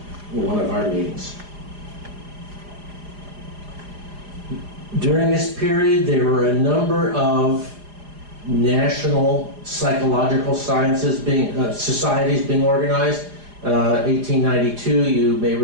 one of our meetings. During this period, there were a number of national psychological sciences societies being organized. 1892, you may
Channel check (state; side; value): late; left; 4.9 ms